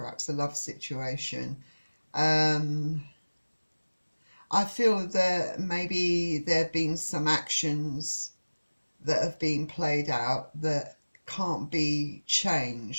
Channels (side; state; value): both; inverted; correlation -1.00